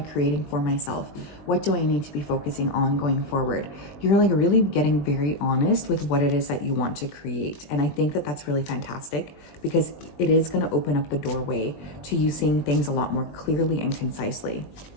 for myself? What do I need to be focusing on going forward? You're like really getting very honest with what it is that you want to create. And I think that that's really fantastic because it is going to open up the doorway to you seeing things a lot more clearly and concisely.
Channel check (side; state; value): right; late; 20 ms